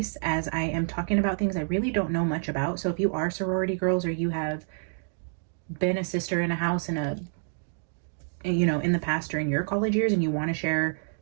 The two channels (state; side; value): silent; left; digital silence